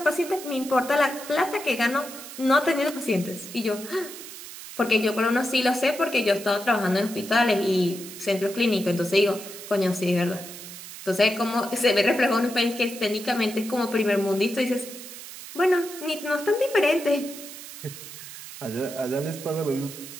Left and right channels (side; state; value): right; noise; hiss, 13 dB below the sound